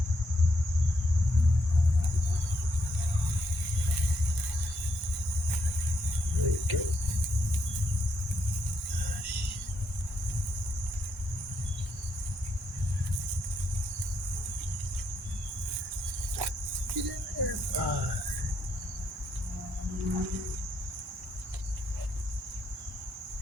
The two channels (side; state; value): both; normal; correlation 0.78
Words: There you go.